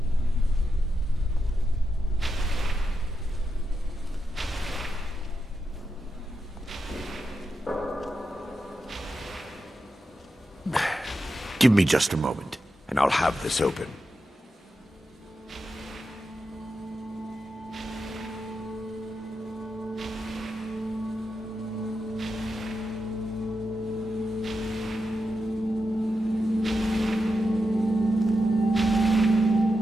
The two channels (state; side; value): normal; both; correlation 0.88